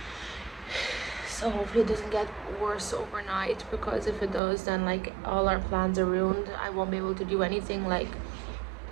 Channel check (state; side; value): drops out; left; at 4.4 s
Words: So hopefully it doesn't get worse overnight, because if it does, then like all our plans are ruined. I won't be able to do anything. Like,